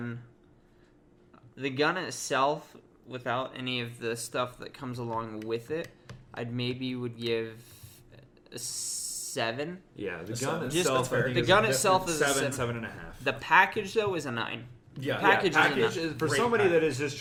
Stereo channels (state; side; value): identical; both; correlation 1.00